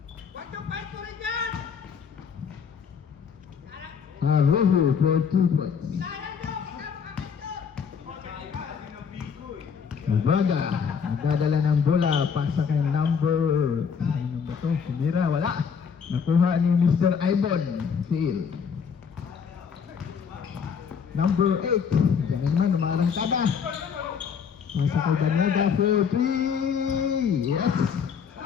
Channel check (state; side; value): quieter; right; 6.7 dB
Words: Huwag yung fight ko rin yan! Rojo for 2 points. Ubaga, nagdadala ng bola, pasa kay number... Ano ba ito? Sumira, wala. Nakuha ni Mr. Ibon, Phil. Number 8. Diyan naman, umarangkada. Pasa kay Daneda for 3. Yes!